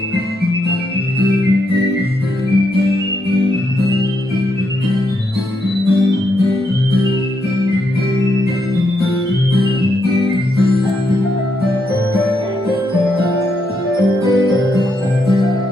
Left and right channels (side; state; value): both; normal; correlation 0.79